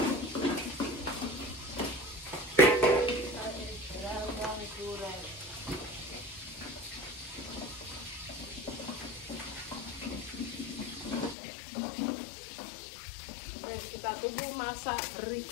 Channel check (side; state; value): right; drops out; at 11.4 s